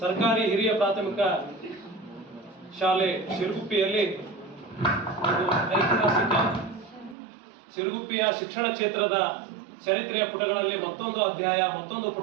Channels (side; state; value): left; drops out; at 7.2 s